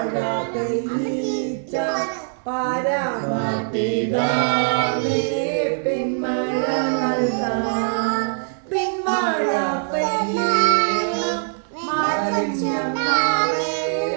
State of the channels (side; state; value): left; silent; digital silence